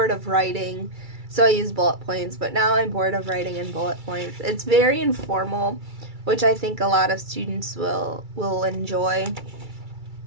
of writing, so I use bullet points, but now I'm bored of writing in bullet points. It's very informal, which I think a lot of students will enjoy.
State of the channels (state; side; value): late; left; 2.3 ms